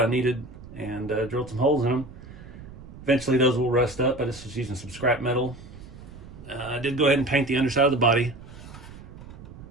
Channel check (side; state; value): right; noise; rumble, 16 dB below the sound